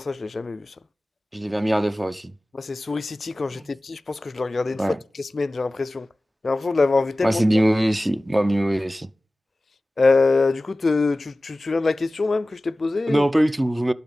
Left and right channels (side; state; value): both; normal; correlation 0.97